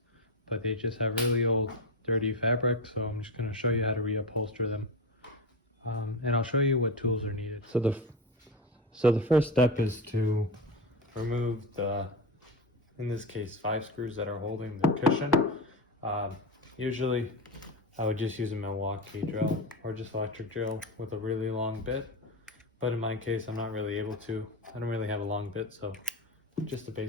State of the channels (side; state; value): both; normal; correlation 0.20